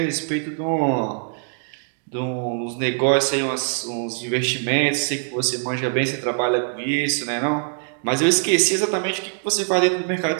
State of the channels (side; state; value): left; silent; digital silence